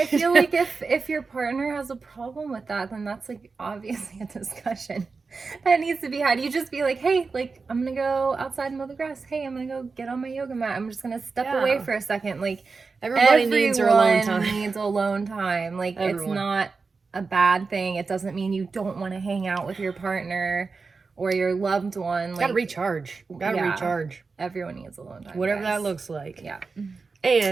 feel like if your partner has a problem with that, then that's like obviously a discussion that needs to be had. You just be like, hey, like, I'm gonna go outside and mow the grass. Hey, I'm gonna go get on my yoga mat. I'm just gonna step away for a second. Like, everyone needs their alone time. Needs alone time. Like, it's not a bad thing. It doesn't mean you don't want to hang out with your partner or your loved one. Like, gotta recharge. Recharge. Everyone needs alone time. Whatever that looks like. Yeah.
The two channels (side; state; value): left; quieter; 4.5 dB